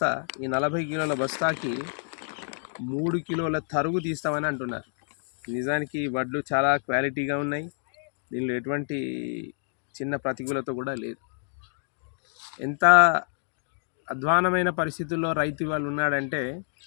ఈ 40 కిలోల బస్తాకి 3 కిలోల తరుగు తీస్తామని అంటున్నారు. నిజానికి వడ్లు చాలా క్వాలిటీగా ఉన్నాయి, దీనిలో ఎటువంటి చిన్న ప్రతికూలత కూడా లేదు. ఎంత అధ్వానమైన పరిస్థితుల్లో రైతు వాళ్ళు ఉన్నాడంటే,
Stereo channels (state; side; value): silent; right; 60 dB below the other